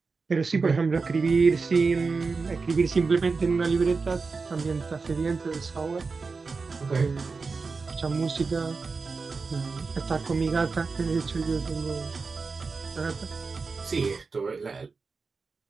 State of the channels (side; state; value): left; quieter; 4.5 dB